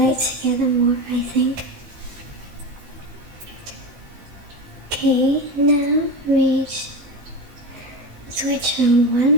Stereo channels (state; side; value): late; left; 16 ms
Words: together more, I think. Okay, now switch from one